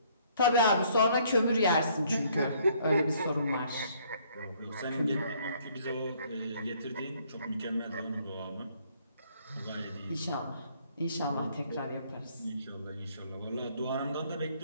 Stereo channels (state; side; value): inverted; both; correlation -0.63